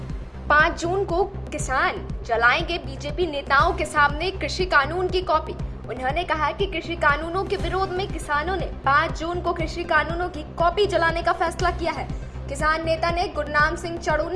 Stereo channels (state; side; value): identical; both; correlation 1.00